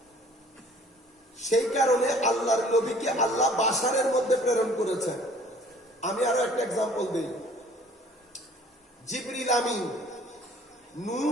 সেই কারণে আল্লাহর নবীকে আল্লাহ বাশারের মধ্যে প্রেরণ করেছেন। আমি আরো একটা এক্সাম্পল দিই। জিবরিল আমিন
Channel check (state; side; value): normal; both; correlation 0.54